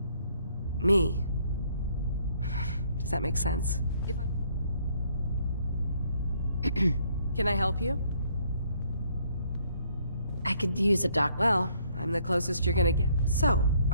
me. Does that make sense? If I... Can I help you? I could use a doc... Well, I'm the closest you're gonna get. So,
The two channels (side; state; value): both; inverted; correlation -0.66